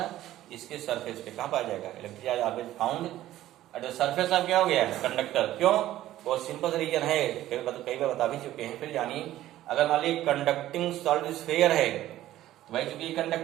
इसके सरफेस पे। कहाँ पाया जाएगा electric charge, always found at the surface of क्या हो गया कंडक्टर। क्यों, बहुत सिंपल रीजन है, कई बार बता भी चुके हैं, फिर जानिए। अगर मान लीजिए कंडक्टिंग सॉलिड स्फीयर है तो भाई चूंकि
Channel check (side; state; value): left; quieter; 14.0 dB